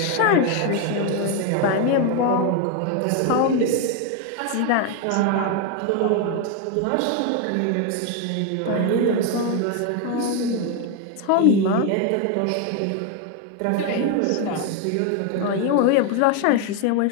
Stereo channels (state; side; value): different; both; correlation 0.01